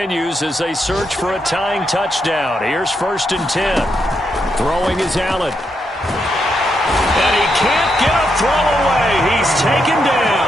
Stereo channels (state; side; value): normal; both; correlation 0.81